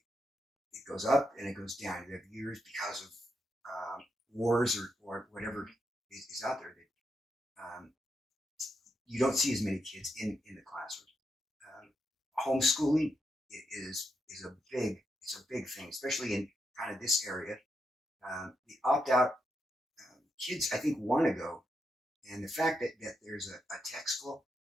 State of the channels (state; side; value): normal; both; correlation 0.83